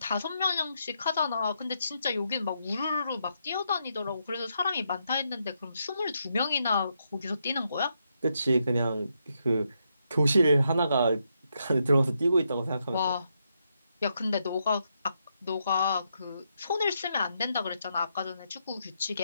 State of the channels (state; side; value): inverted; both; correlation -0.80